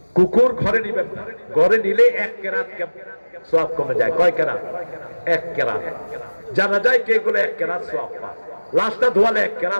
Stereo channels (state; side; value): inverted; both; correlation -1.00